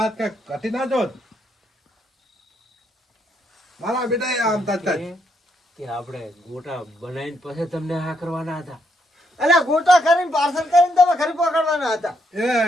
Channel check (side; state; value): both; normal; correlation 0.76